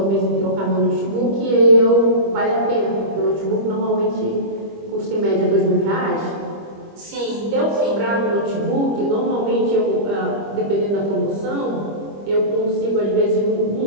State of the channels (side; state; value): left; late; 25 ms